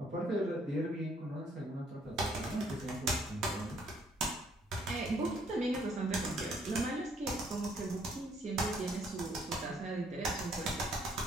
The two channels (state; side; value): normal; both; correlation 0.65